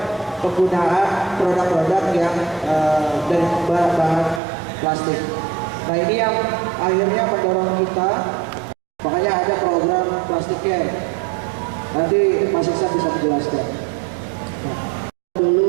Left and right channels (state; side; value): drops out; left; at 4.4 s